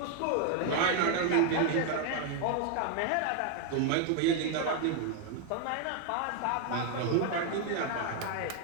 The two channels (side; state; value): both; different; correlation 0.00